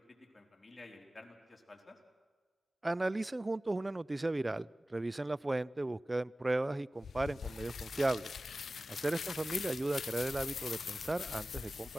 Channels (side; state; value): both; normal; correlation 0.96